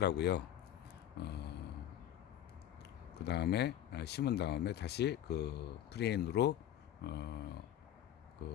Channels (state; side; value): quieter; right; 11.3 dB